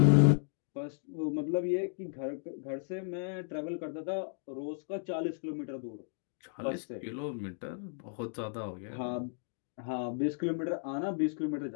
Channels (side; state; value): right; silent; digital silence